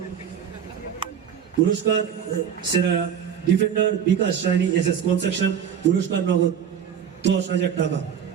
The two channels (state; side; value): quieter; left; 8.3 dB